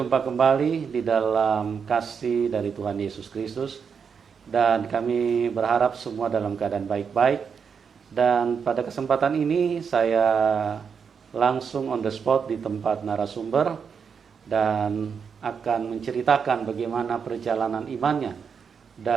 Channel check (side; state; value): left; quieter; 6.4 dB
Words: kembali di dalam kasih dari Tuhan Yesus Kristus. Dan kami berharap semua dalam keadaan baik-baik. Dan pada kesempatan ini saya langsung on the spot di tempat narasumber. Dan akan menceritakan bagaimana perjalanan imannya.